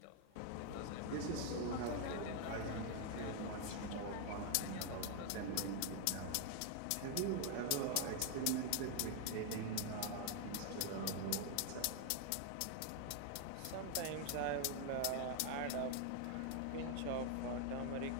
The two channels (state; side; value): different; both; correlation 0.00